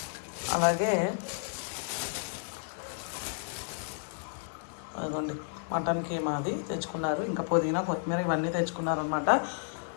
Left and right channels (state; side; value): silent; right; digital silence